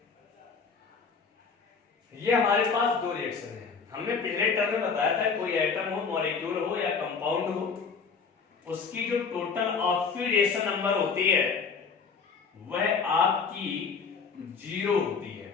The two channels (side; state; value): right; quieter; 5.4 dB